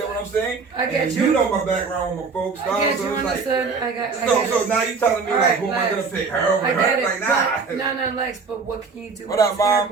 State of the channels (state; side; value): quieter; left; 4.8 dB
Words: what I'm saying? I get and you. You know my background with my folks, dog. I get so you, it's like, understood. I get so it. now you telling me All like, right, who am I Lex. gonna pick? Her over I get her? it. Like, nah. No, Lex, but what can you do What when up, it's Mom?